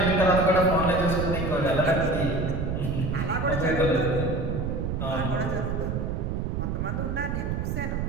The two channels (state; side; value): noise; right; rumble, 1 dB below the sound